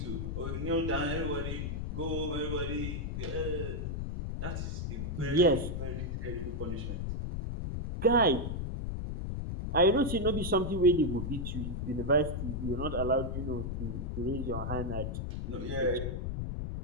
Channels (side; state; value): left; noise; rumble, 3 dB below the sound